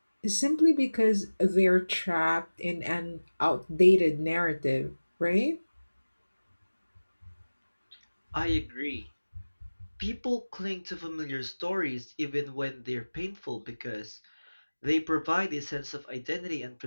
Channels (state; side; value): inverted; both; correlation -1.00